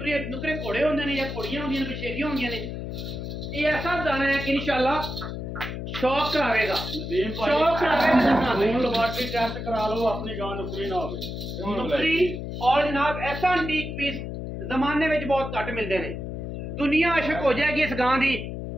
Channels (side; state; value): left; noise; hum, 6 dB below the sound